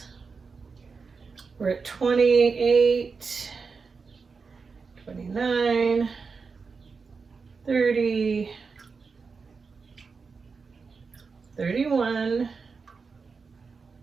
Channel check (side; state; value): left; quieter; 4.9 dB